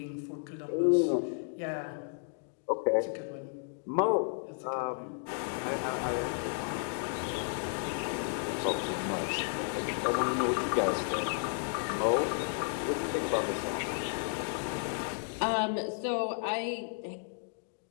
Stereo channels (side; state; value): right; silent; digital silence